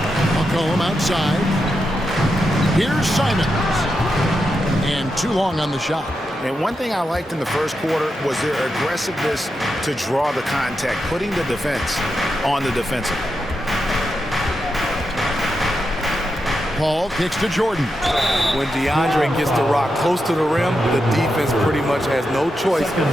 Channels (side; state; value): both; normal; correlation 0.86